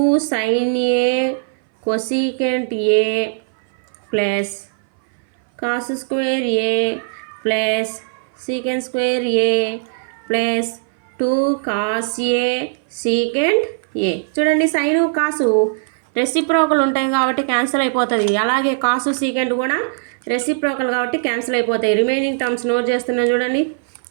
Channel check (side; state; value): left; silent; 60 dB below the other